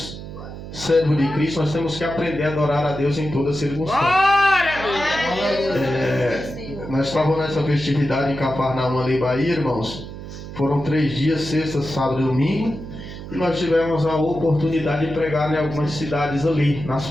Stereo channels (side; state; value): right; noise; hum, 11 dB below the sound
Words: servos de Cristo, nós temos que aprender a adorar a Deus em toda circunstância. Nós estávamos nessa festividade em Cafarnaum, ali, Bahia, irmãos. Foram 3 dias, sexta, sábado e domingo. E nós tivemos a oportunidade de pregar em algumas cidades ali, nas